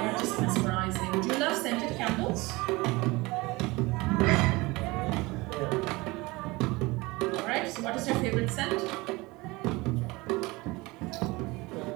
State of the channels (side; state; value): left; quieter; 22.7 dB